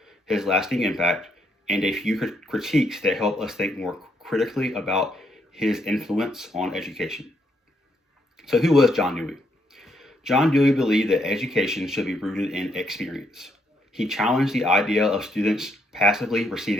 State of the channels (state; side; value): normal; both; correlation 0.74